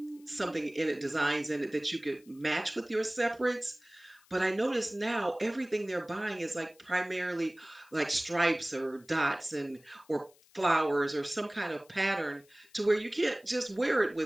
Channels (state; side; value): noise; left; hiss, 29 dB below the sound